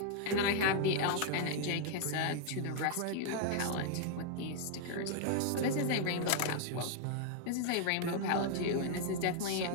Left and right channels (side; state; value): both; different; correlation 0.00